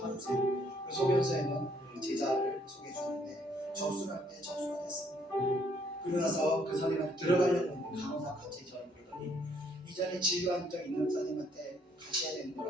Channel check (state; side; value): normal; both; correlation 0.67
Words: 그 소견서에는 제자를 소개해 주는데 접수를 할 때 접수가 됐습니다. 그러고 나서 그 선생님한테 들어가려고 했는데 간호사가 갑자기 저를 부르더니 이전에 진료한 적 있는 선생님한테 가셔야 되는